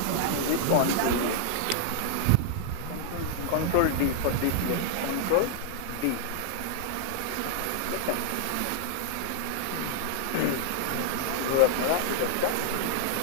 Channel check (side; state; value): both; different; correlation -0.01